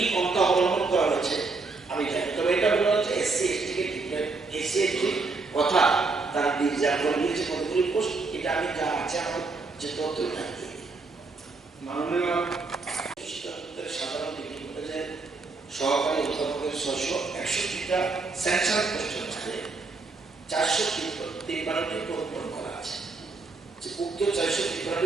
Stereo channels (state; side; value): quieter; left; 3.9 dB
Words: পন্থা অবলম্বন করা হয়েছে আমি জানি তবে এটা বলা হচ্ছে এসসি এসটি কে এসসি এসটি কথা তারা রিজার্ভ করে দিয়েছে কতগুলি পোস্ট এটা আমি যা আছে আমার যে তথ্য থাকি মাননীয় সাধারণ ডিগ্রি কলেজের 661টা স্যাংশন পোস্টের মধ্যে 453টি পূরণ করা আছে। যে উক্ত 453টি